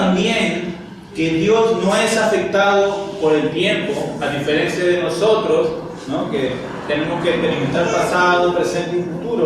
que Dios no es afectado por el tiempo, a diferencia de nosotros, ¿no? Que tenemos que experimentar pasado, presente y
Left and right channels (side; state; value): both; identical; correlation 1.00